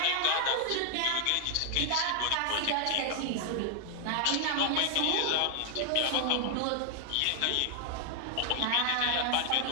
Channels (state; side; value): different; both; correlation 0.00